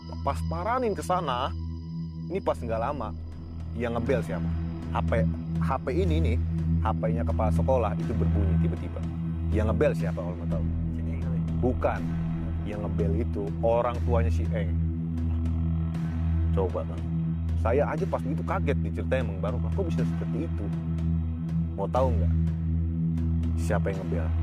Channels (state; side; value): identical; both; correlation 1.00